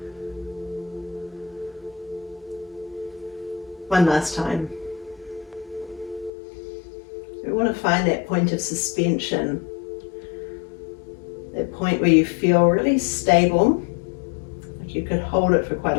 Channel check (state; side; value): drops out; right; at 6.3 s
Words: One last time. We want to find that point of suspension, that point where you feel really stable, like you could hold it for quite